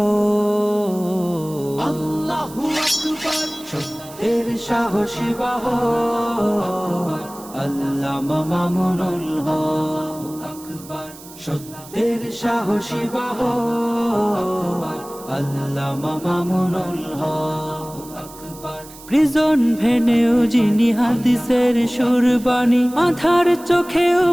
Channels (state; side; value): noise; right; hiss, 18 dB below the sound